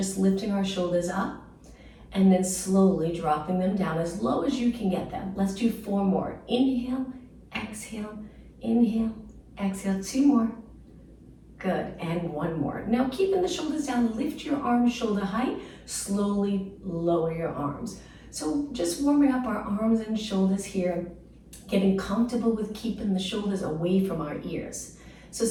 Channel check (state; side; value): identical; both; correlation 1.00